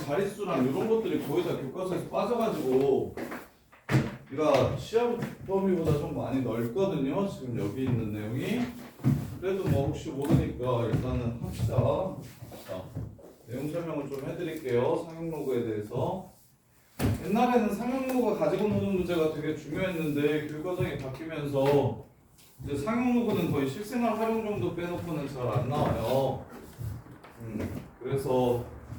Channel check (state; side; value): identical; both; correlation 1.00